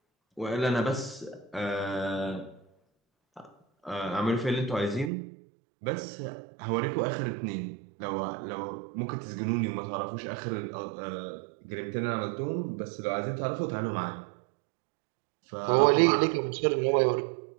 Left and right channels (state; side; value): drops out; left; at 5.1 s